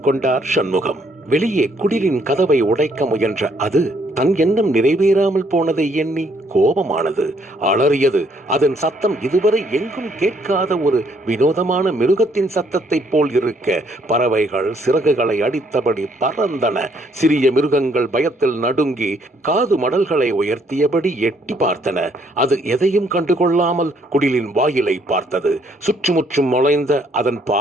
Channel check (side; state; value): both; normal; correlation 0.68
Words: கொண்டார் சண்முகம். வெளியே குடிலின் கதவை உடைக்க முயன்ற அது தன் எண்ணம் நிறைவேறாமல் போனதை எண்ணி கோபமானது, அலறியது. அதன் சத்தம் இதுவரை எங்கும் கேட்காத ஒரு வினோதமான மிருகத்தின் சத்தத்தை போல் இருக்க பறவைகள் சிறகுகளை அடித்தபடி பறந்தன. சிறிய மிருகங்கள் பயத்தில் நடுங்கி காது மடல்களை உயர்த்தியபடி எட்டி பார்த்தன. அது எதையும் கண்டுகொள்ளாமல் குடிலின் வாயிலை பார்த்தது. சுற்றுமுற்றும் நுழைந்த அதன்